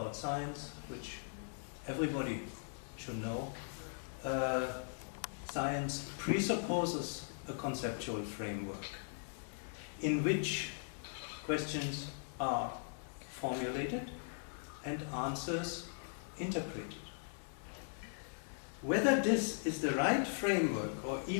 science, which everybody should know. Science presupposes a conceptual framework in which questions are formulated and answers interpreted. Whether this is the right framework or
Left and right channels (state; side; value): silent; right; 51 dB below the other